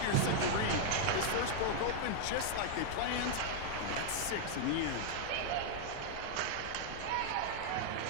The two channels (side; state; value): both; different; correlation -0.01